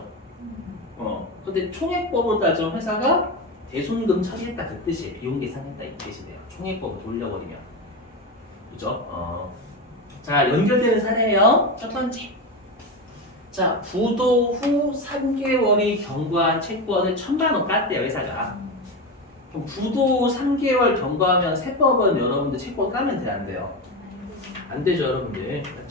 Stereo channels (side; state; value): both; normal; correlation 0.18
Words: 근데 총액법으로 따지면 회사가 대손금 처리했다 그 뜻이에요. 비용 계산했다 이 뜻이 돼요. 총액법을 돌려버리면. 그죠? 자, 연결되는 사례예요. 첫 번째. 자, 부도 후 3개월이 경과한 채권을 1000만원 깠대요, 회사가. 그럼 부도 3개월 경과하면 세법은 여러분들 채권 까면 돼요, 안 돼요? 안 되죠, 여러분들.